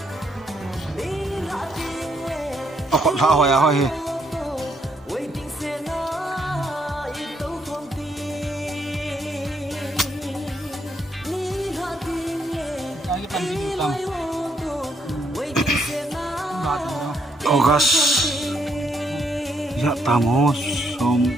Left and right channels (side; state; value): both; normal; correlation 0.73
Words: akot ha hoya hoi hi August ya tamo